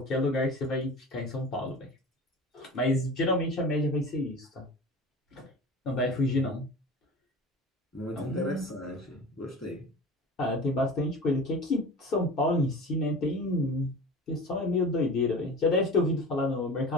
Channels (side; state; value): both; normal; correlation 0.36